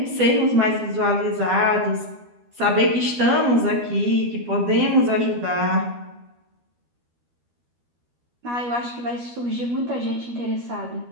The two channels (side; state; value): left; late; 12 ms